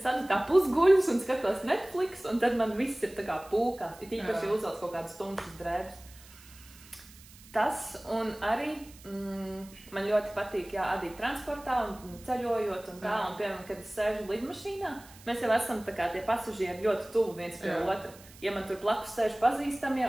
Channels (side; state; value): right; noise; hiss, 22 dB below the sound